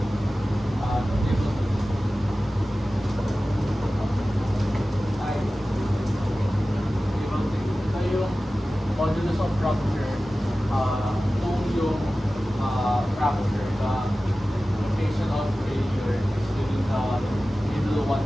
Modulus of rupture, kung yung fracture, the location of failure is within the middle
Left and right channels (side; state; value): both; normal; correlation 0.96